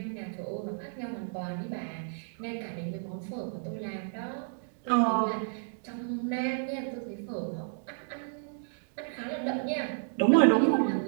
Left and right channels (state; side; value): silent; left; digital silence